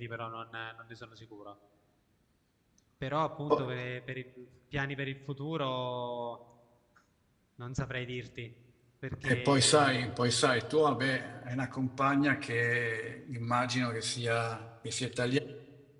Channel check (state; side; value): identical; both; correlation 1.00